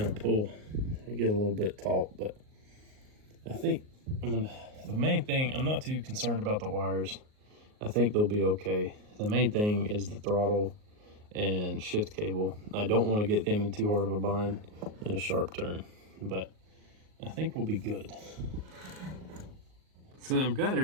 of pull. They get a little bit taut, but I think the main thing, I'm not too concerned about the wires. I think they'll be okay. The main thing is the throttle and shift cable. I don't want to get them in too hard of a bind in a sharp turn, but I think we'll be good. So I've got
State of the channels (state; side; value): late; left; 38 ms